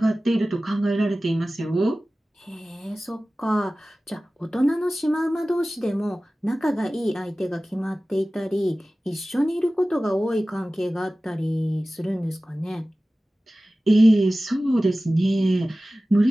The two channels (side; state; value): both; normal; correlation 0.97